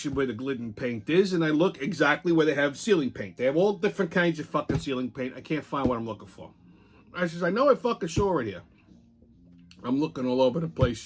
where the Glidden paint is, and I look exactly where they have ceiling paint. They have all different kinds of fucking ceiling paint. I can't find what I'm looking for. I says, I know I fucking saw it here. I'm looking all over the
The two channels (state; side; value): identical; both; correlation 1.00